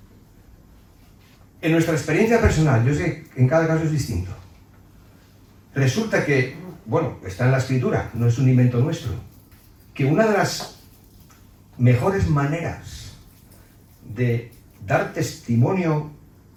En nuestra experiencia personal, yo sé que en cada caso es distinto. Resulta que, bueno, está en la Escritura, no es un invento nuestro, que una de las mejores maneras de dar testimonio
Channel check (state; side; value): identical; both; correlation 1.00